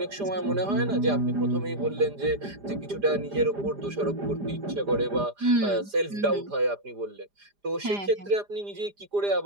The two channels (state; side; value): late; left; 4.9 ms